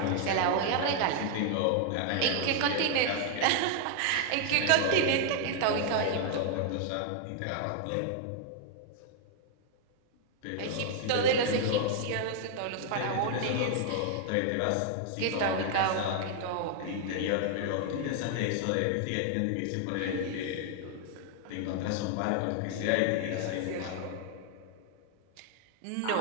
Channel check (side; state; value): both; different; correlation 0.00